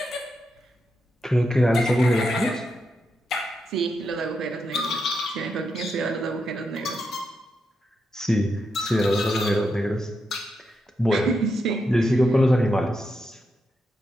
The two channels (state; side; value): normal; both; correlation 0.85